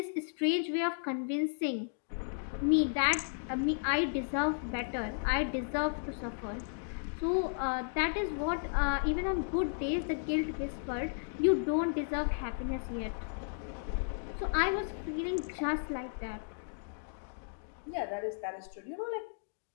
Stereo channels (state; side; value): silent; right; digital silence